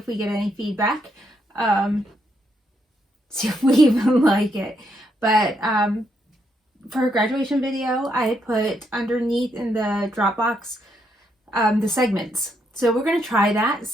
we get any feedback, see if we even like it. But for a graduation video, I had put underneath in the Dropbox the segments. So we're going to try that,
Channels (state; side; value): normal; both; correlation 0.77